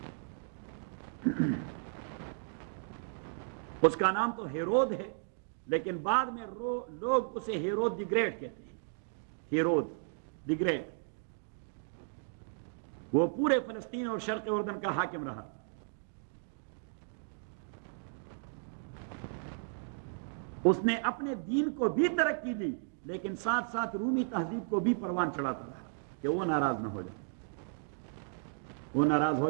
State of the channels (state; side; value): silent; left; digital silence